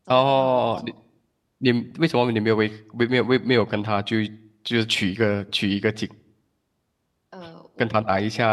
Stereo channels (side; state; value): both; identical; correlation 1.00